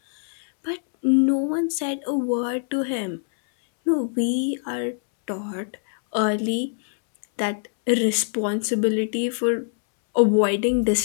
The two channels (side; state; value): right; silent; 63 dB below the other